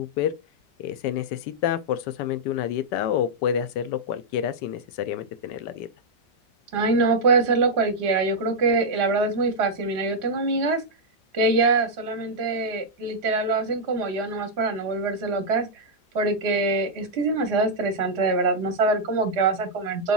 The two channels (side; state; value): both; normal; correlation -0.05